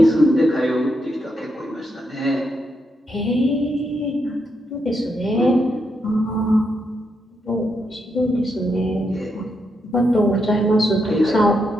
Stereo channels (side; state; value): both; normal; correlation 0.81